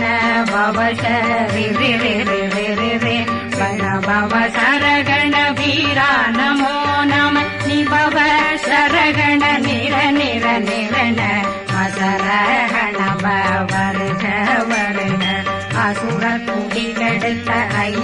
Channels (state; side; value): identical; both; correlation 1.00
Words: பவசரி ரி ரி ரி ரி ரி ரி விண பவசரகண வீரா நமோ நம நிபவ சரகண நிர நிர நிரண மசரகண வருக வருக அசுர குடிகெடுத்த